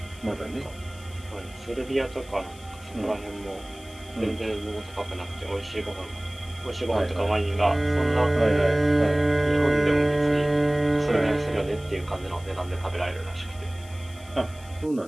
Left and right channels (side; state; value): left; noise; hiss, 22 dB below the sound